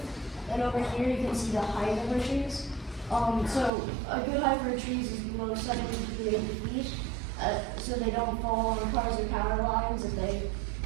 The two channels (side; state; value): left; drops out; at 3.7 s